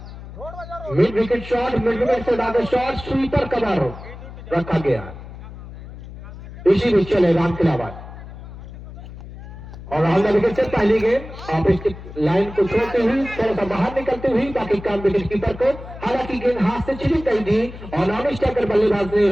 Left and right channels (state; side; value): noise; left; hum, 14 dB below the sound